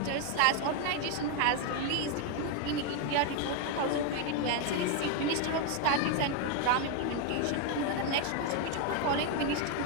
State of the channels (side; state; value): both; different; correlation 0.01